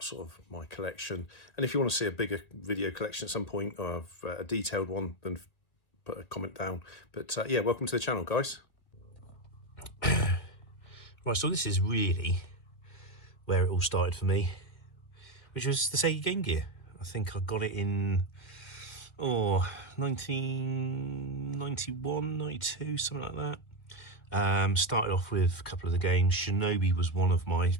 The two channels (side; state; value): right; late; 2.0 ms